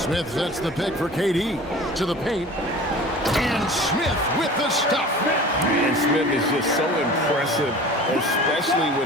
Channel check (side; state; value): both; normal; correlation 0.40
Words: sets the pick for KD to the paint. And Smith with the stuff. And Smith is just so impressive, especially